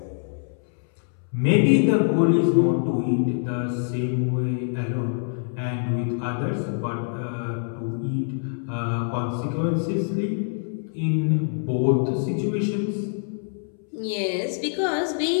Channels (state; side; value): silent; right; 62 dB below the other